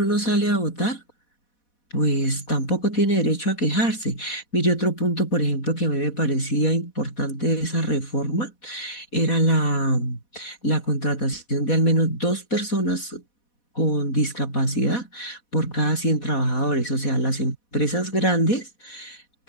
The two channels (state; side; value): late; right; 4.1 ms